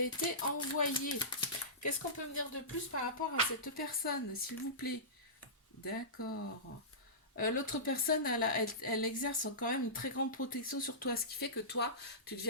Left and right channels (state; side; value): normal; both; correlation -0.20